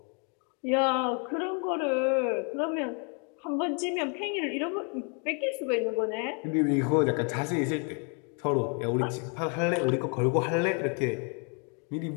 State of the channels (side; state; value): right; quieter; 38.0 dB